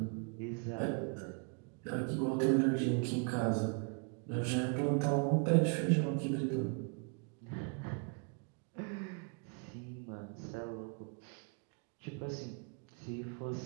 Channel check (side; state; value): left; quieter; 36.8 dB